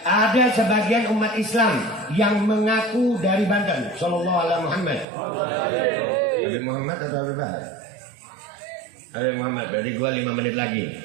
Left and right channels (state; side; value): drops out; left; at 5.1 s